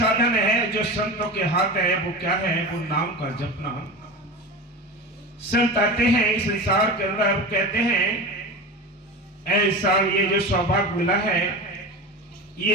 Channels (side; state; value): both; normal; correlation 0.28